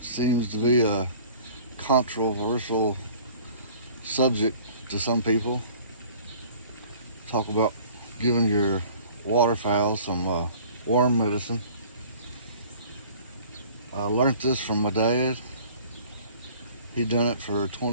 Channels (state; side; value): inverted; both; correlation -0.49